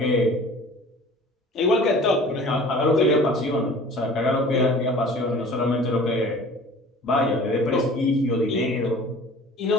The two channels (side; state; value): both; normal; correlation 0.45